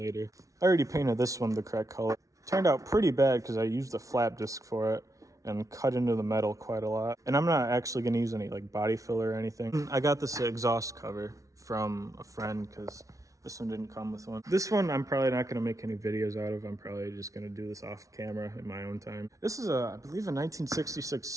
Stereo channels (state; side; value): late; left; 0.16 ms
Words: I already painted this one the correct color. Turned out pretty bad because I used a flap disc for it and cut into the metal quite a lot. And I'm not actually gonna use any like body filler or anything. I got this exhaust cover from a friend because this one didn't come with one. This one I'm probably not gonna make any videos out of. I'm probably just gonna do this off camera in my own time. This is I believe a 1966